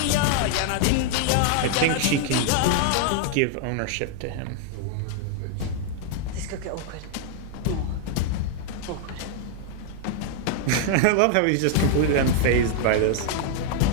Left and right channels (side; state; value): both; different; correlation 0.00